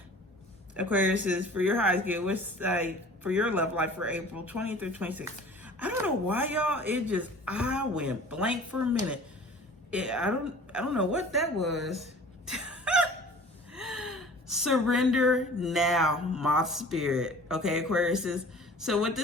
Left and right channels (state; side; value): normal; both; correlation 0.45